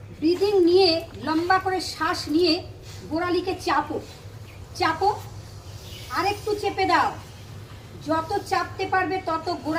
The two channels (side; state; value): both; identical; correlation 1.00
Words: ব্রিদিং নিয়ে লম্বা করে শ্বাস নিয়ে গোড়ালিকে চাপো চাপো, আরেকটু চেপে দাও। যত চাপতে পারবে তত